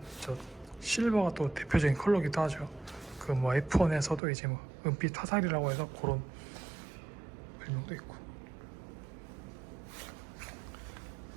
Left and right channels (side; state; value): left; drops out; at 4.2 s